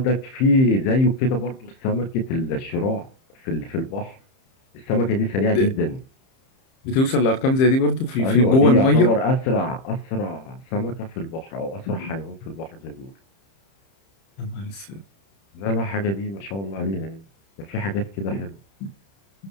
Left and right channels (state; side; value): late; right; 30 ms